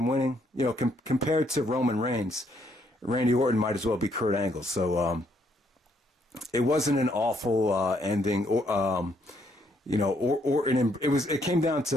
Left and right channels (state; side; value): normal; both; correlation 0.71